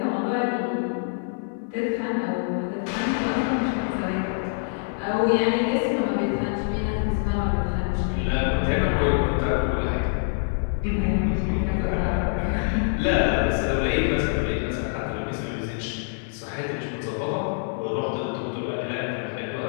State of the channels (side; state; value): right; silent; 61 dB below the other